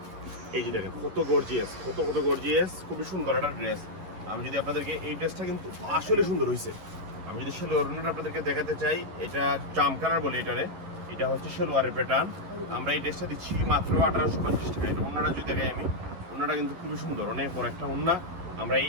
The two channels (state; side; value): late; left; 11 ms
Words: এই যে দেখেন কত গর্জিয়াস, কত গর্জিয়াস, খুবই সুন্দর একটা ড্রেস। আমি যদি আপনাদেরকে এই ড্রেসটা কিন্তু আসলে সুন্দর হয়েছে। আমি যদি সেলোয়ারটা আপনাদেরকে দেখাতে চাই, এটা জাম কালার বলে এটারে। এটা হচ্ছে সেলোয়ারের প্যাটার্ন। আমরা এই ড্রেসটা দিচ্ছি মাত্র 1850 টাকা। এটা ওন্নাটা যদি দেখাই আমি, ওন্নাটা কিন্তু খুবই সুন্দর, অনেক বড় একটা ওন্না। আমরা এই